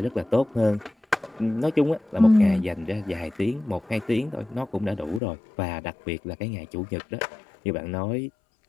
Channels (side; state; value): right; drops out; at 5.2 s